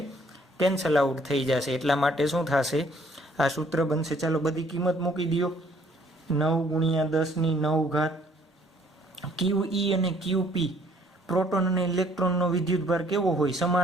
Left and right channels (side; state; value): both; normal; correlation 0.62